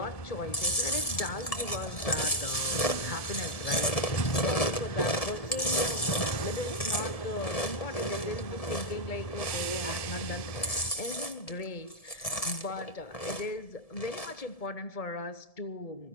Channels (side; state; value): right; late; 1.7 ms